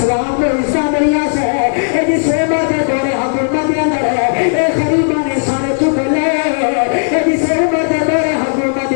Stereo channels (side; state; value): right; silent; digital silence